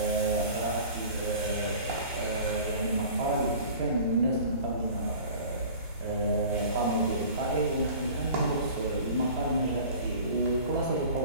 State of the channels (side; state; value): both; inverted; correlation -0.43